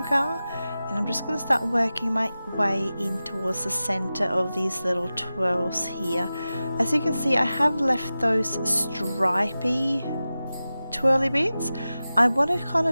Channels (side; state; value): both; inverted; correlation -0.95